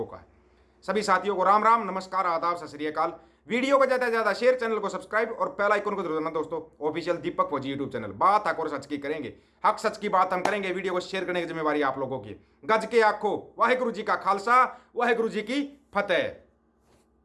का है। सभी साथियों को राम राम, नमस्कार, आदाब, सत श्री अकाल। वीडियो को ज़्यादा से ज़्यादा शेयर, चैनल को सब्सक्राइब और बेल आइकन को जरूर दबाना दोस्तों। ऑफिशियल दीपक फौजी यूट्यूब चैनल, बात हक और सच की करेंगे, हक सच की बात हम करेंगे। वीडियो को शेयर करने की जिम्मेवारी आप लोगों की। गज के आखो, वाहेगुरु जी का खालसा, वाहेगुरु जी की फतेह।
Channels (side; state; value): both; identical; correlation 1.00